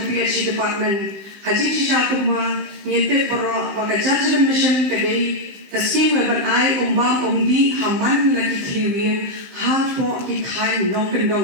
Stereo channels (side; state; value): left; late; 15 ms